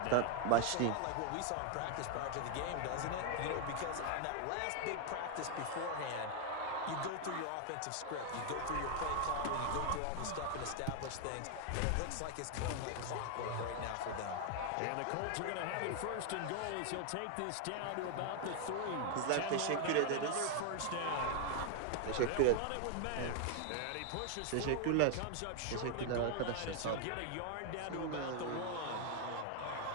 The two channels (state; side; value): different; both; correlation 0.00